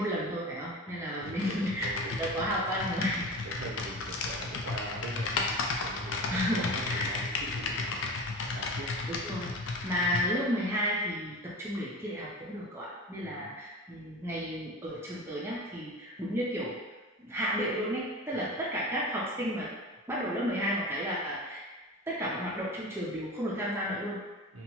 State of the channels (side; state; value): both; normal; correlation 0.32